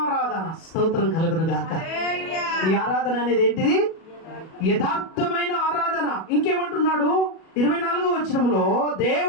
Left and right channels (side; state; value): right; late; 37 ms